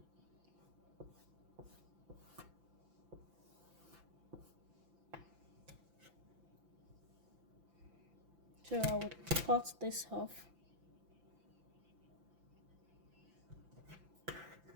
So I would cut this off.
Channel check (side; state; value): left; late; 5.9 ms